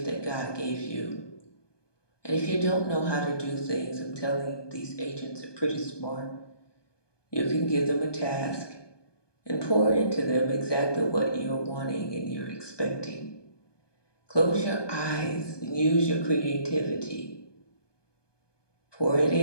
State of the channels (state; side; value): late; right; 1.2 ms